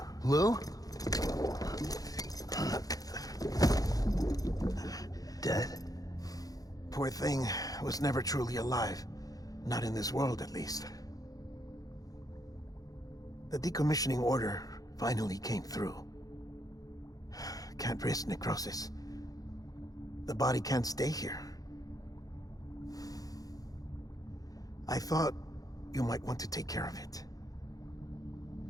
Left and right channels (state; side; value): late; right; 0.18 ms